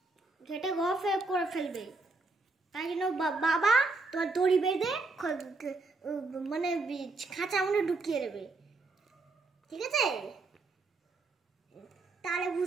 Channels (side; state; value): left; quieter; 3.5 dB